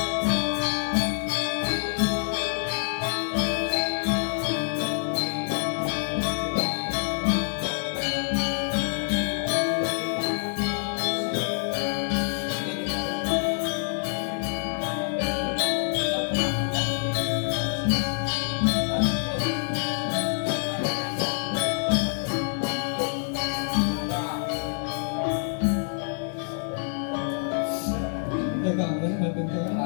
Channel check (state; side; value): silent; right; digital silence